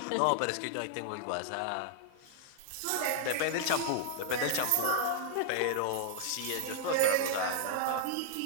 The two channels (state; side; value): different; both; correlation -0.01